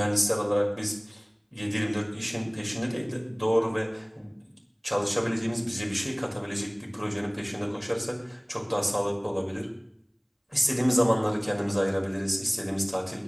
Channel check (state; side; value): identical; both; correlation 1.00